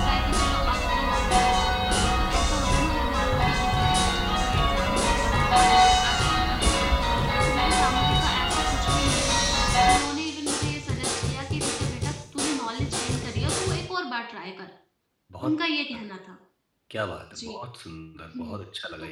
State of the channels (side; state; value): both; identical; correlation 1.00